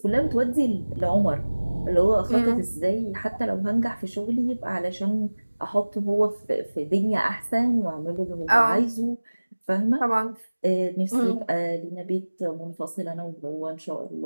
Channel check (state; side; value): inverted; both; correlation -1.00